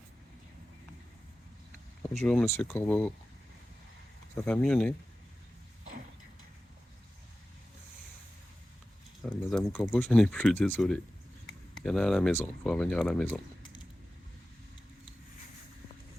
Bonjour Monsieur Corbeau. Ça va mieux, né? Ah, Madame Corbeau, je n'ai plus, désolé. Il y en a à la maison, il faut revenir à la maison.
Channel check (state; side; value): normal; both; correlation 0.94